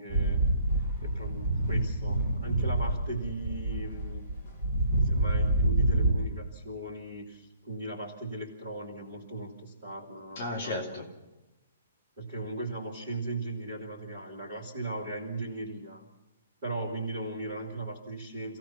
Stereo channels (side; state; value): both; inverted; correlation -0.62